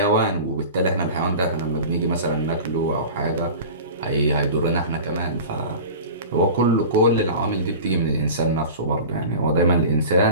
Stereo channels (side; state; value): both; inverted; correlation -0.35